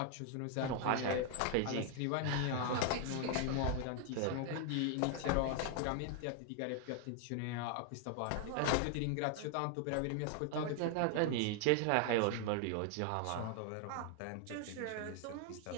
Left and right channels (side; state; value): both; different; correlation 0.00